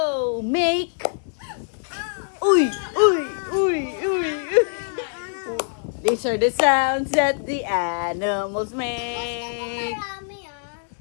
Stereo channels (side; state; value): right; silent; digital silence